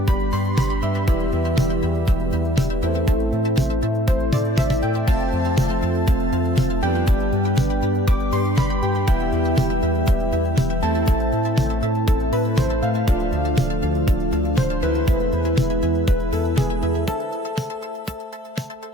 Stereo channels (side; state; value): both; normal; correlation 0.55